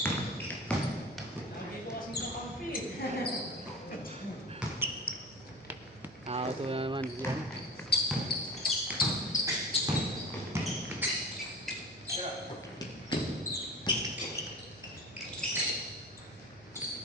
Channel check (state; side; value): noise; right; hum, 23 dB below the sound